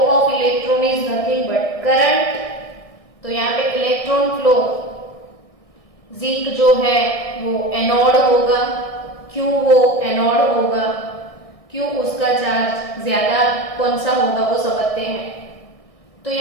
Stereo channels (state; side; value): late; right; 1.6 ms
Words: electron is nothing but current, तो यहाँ पे इलेक्ट्रॉन फ्लो, जिंक जो है वो एनोड होगा। क्यों वो एनोड होगा, क्यों उसका चार्ज ज्यादा कौन सा होगा वो समझते हैं। तो